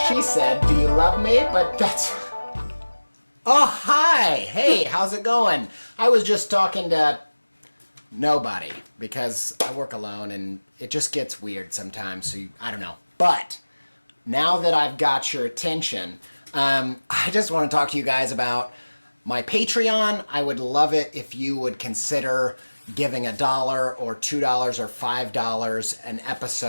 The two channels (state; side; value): inverted; both; correlation -1.00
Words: she said, "Do you love me?" But that's... Oh, hi! Hey, how's it going? I was just talking to nobody because I work alone and it just gets weird sometimes, so I don't know. But now that I've got your attention, I just want to talk to you guys about my Patreon. I would love it if you would consider giving $1 or $2 or $5 an